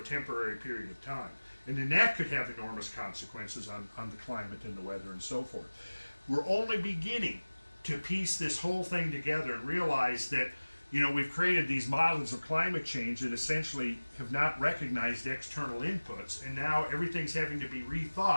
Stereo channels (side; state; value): both; inverted; correlation -1.00